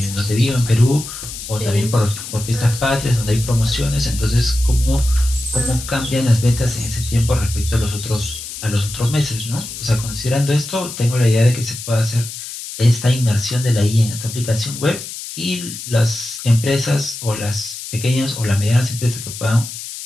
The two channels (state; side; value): noise; left; hiss, 10 dB below the sound